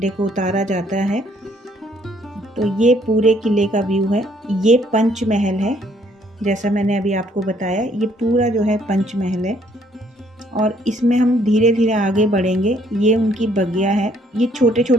को उतारा जाता है। तो ये पूरे किले का व्यू है। ये पंचमहल है, जैसा मैंने अभी आपको बताया, ये पूरा जो है पंचमहल है। और इसमें हम धीरे धीरे आगे बढ़ेंगे। ये उनकी बगिया है। ये छोटे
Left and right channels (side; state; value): both; normal; correlation 0.65